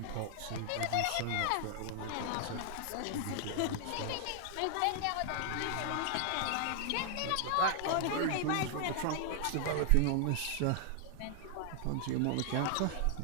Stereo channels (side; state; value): both; different; correlation 0.00